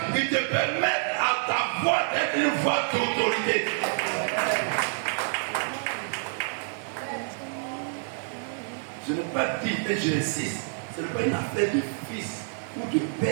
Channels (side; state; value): left; silent; digital silence